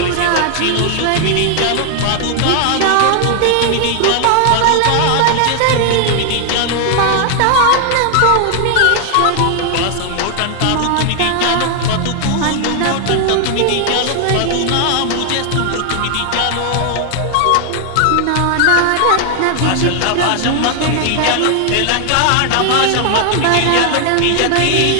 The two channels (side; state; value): both; different; correlation 0.00